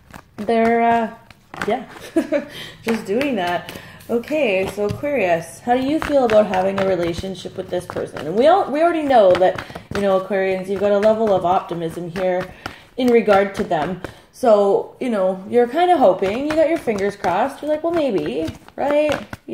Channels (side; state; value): both; identical; correlation 1.00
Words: just doing that. Okay, so Aquarius, how do you feel about having a relationship with this person? And we already know that, Aquarians, you've got a level of optimism here in regard to them. So, you're kind of hoping, you got your fingers crossed. You're like, well, maybe, right?